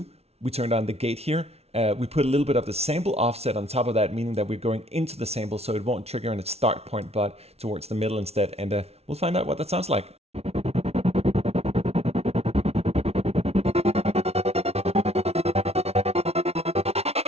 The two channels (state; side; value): late; left; 0.30 ms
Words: We turned on the gate here. We put a little bit of the sample offset on top of that, meaning that we're going into the sample, so it won't trigger in its start point, but towards the middle instead. And we'll find out what that sounds like.